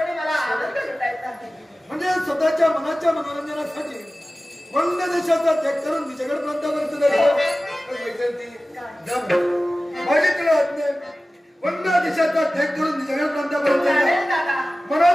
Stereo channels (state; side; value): normal; both; correlation 0.96